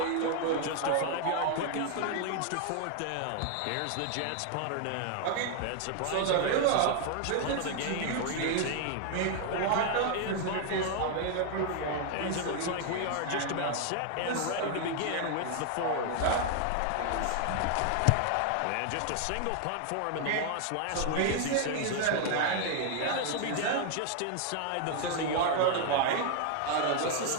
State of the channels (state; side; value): different; both; correlation 0.00